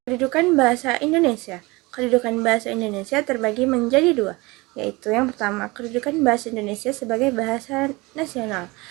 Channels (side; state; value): left; quieter; 23.6 dB